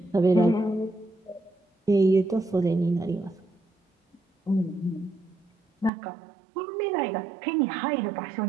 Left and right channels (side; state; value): left; drops out; at 5.9 s